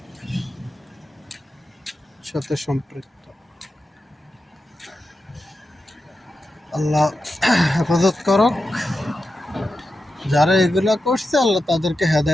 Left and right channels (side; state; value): both; normal; correlation 0.90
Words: সাথে সম্পৃক্ত। আল্লাহ হেফাজত করুক। যারা এগুলা করছে আল্লাহ তাদেরকে